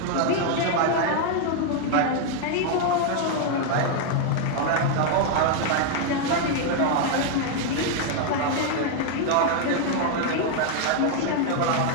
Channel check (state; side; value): different; both; correlation 0.00